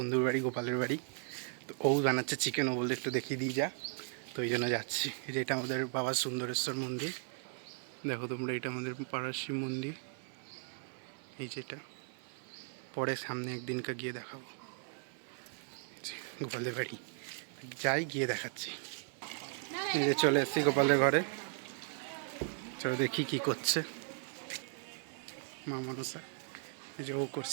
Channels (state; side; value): silent; left; 53 dB below the other